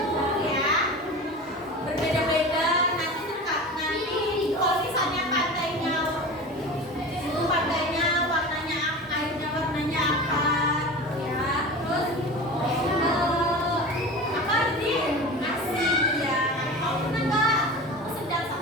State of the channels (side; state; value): both; normal; correlation 0.32